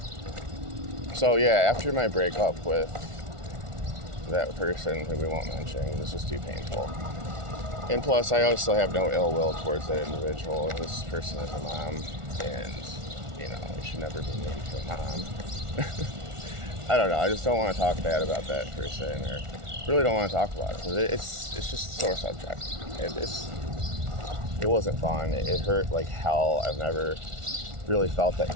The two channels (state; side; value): late; left; 1.4 ms